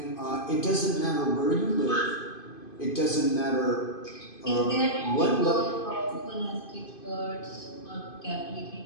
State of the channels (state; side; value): late; right; 2.5 ms